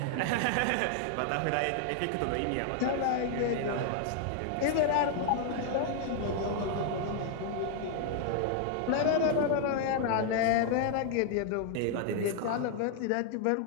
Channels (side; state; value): both; different; correlation 0.00